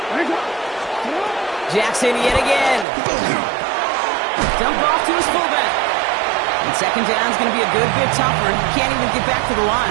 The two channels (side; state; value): left; drops out; at 2.9 s